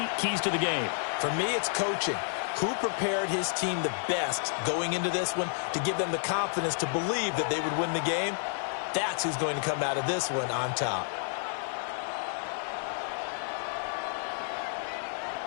keys to the game. For me, it's coaching. Who prepared his team the best going into this one to give them the confidence to believe that they would win the game? That's who's going to come out of this one on top.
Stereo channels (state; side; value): silent; right; digital silence